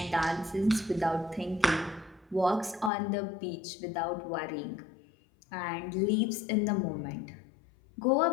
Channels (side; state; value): right; drops out; at 2.9 s